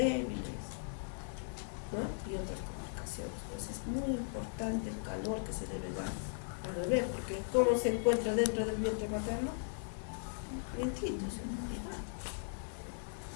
¿no? Y otras complicaciones. Pues es muy importante el calor que se debe dar al bebé, porque ¿cómo se encuentra dentro del vientre materno? Vientitos,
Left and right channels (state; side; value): silent; right; digital silence